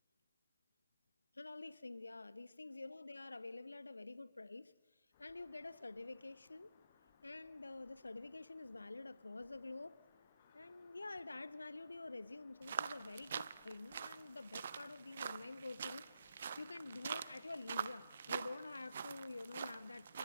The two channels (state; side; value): inverted; both; correlation -0.86